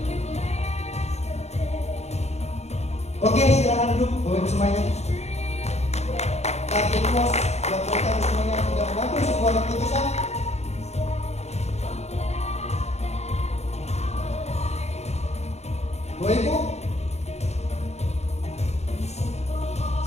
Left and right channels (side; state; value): right; late; 0.32 ms